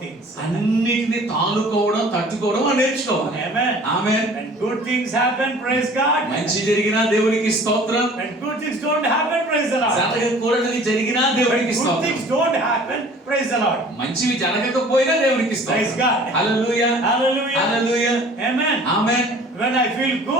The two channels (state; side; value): normal; both; correlation 0.49